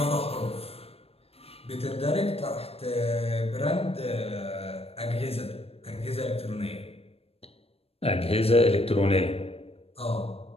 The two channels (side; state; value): right; late; 0.28 ms